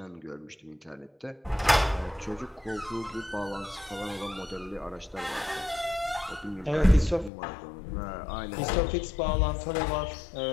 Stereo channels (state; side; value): drops out; right; at 7.3 s